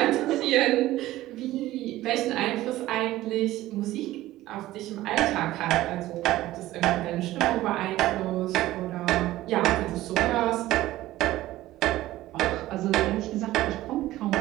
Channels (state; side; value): quieter; left; 15.9 dB